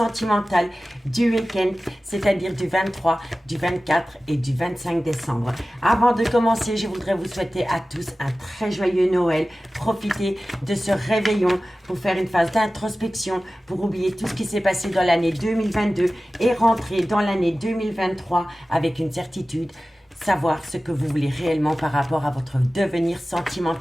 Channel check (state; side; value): normal; both; correlation 0.96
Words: du week-end, c'est-à-dire du 23, du 24 et du 25 décembre. Avant de commencer, je voudrais vous souhaiter à tous un très joyeux Noël. Profitez de ce réveillon pour faire une phase d'introspection, pour oublier tout ce qui s'est passé dans l'année 2022 et rentrer dans l'année 2023 avec une certitude. Savoir ce que vous voulez réellement par rapport à votre devenir